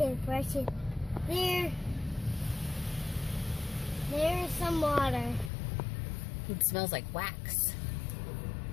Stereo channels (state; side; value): drops out; right; at 5.5 s